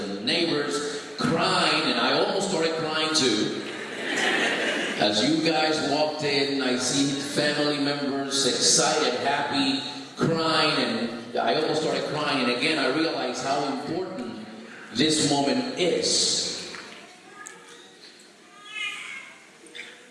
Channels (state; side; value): identical; both; correlation 1.00